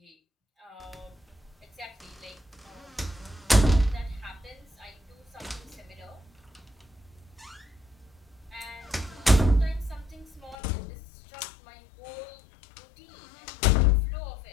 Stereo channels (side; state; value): right; drops out; at 10.6 s